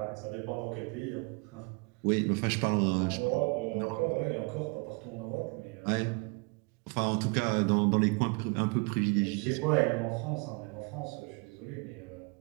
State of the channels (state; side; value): quieter; left; 30.5 dB